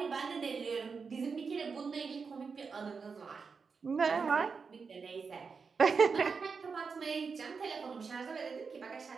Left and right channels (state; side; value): quieter; left; 5.2 dB